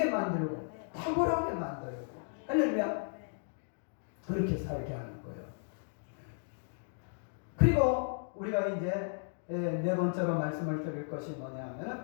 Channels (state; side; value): silent; right; digital silence